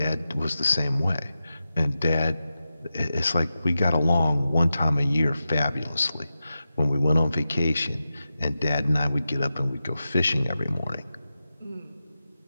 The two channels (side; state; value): both; inverted; correlation -0.92